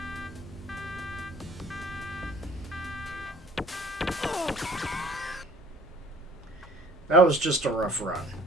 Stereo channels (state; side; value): normal; both; correlation 0.52